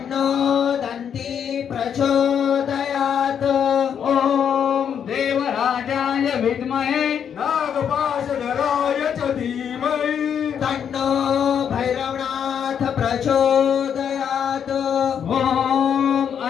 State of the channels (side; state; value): right; quieter; 8.1 dB